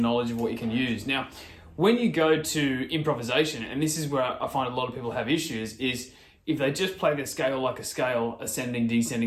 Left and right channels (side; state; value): both; identical; correlation 1.00